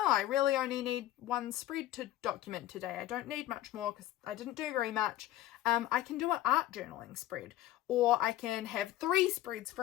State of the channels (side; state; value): right; quieter; 14.4 dB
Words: I really only need one spread to document today, I don't need much more because I didn't do very much, I can do an art journaling spread, or I can have 3 spreads